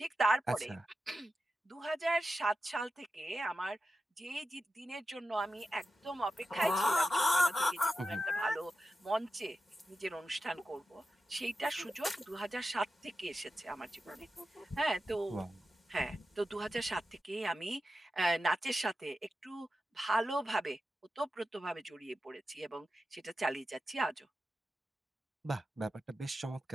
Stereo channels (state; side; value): normal; both; correlation 0.91